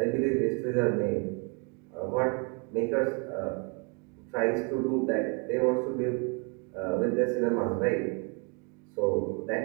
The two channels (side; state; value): left; quieter; 34.7 dB